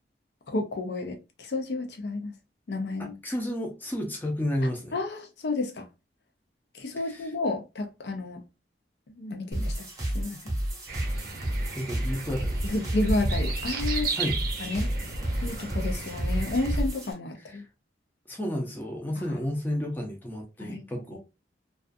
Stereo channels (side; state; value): both; normal; correlation 0.68